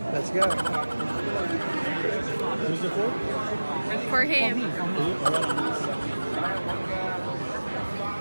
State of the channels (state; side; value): inverted; both; correlation -1.00